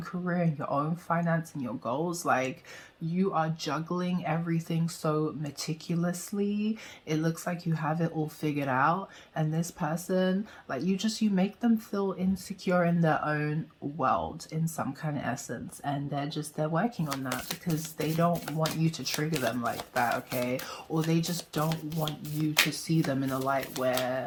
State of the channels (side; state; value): both; identical; correlation 1.00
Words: career and your own finance and your goals, like you are juggling everything so meticulously. It looks like you have it all figured out. And this person, like you make them feel insecure in their own world in some kind of essence. And they're working on that because they don't want you to trigger them like that, okay? Or they just don't want you to see them in a light